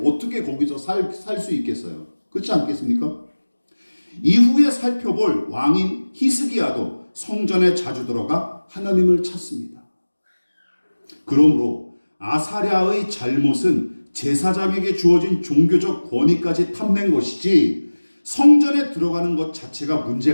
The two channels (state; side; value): inverted; both; correlation -1.00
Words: 어떻게 거기서 살 수 있겠어요? 그렇지 않겠습니까? 이후에 살펴볼 왕인 히스기야도 성전에 자주 들어가 하나님을 찾습니다. 그러므로 아사랴의 잘못은 제사장에게 주어진 종교적 권위까지 탐낸 것이지 성전에 들어가는 것 자체가